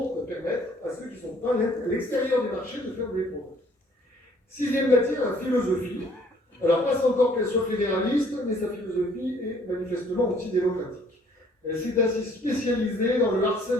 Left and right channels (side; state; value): both; normal; correlation 0.59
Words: permettre à ceux qui ne sont pas à l'extérieur du marché de faire des progrès. Sixième matière, la philosophie. Alors, passe encore qu'elle soit fédéraliste, mais sa philosophie est manifestement antidémocratique. Elle s'est ainsi spécialisée dans le